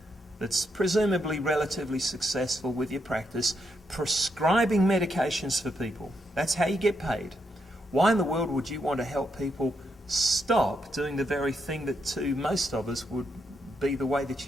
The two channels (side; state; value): both; normal; correlation 0.80